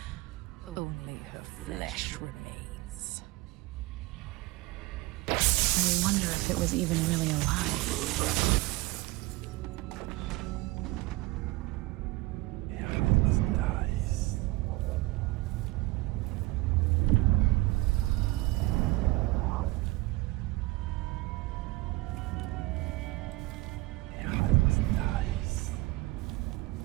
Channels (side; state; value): left; quieter; 20.9 dB